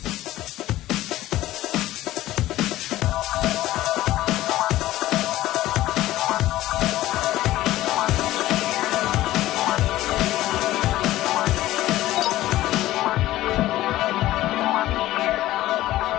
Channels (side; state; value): right; quieter; 15.5 dB